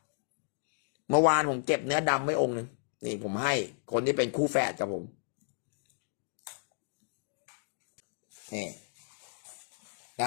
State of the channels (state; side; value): silent; right; digital silence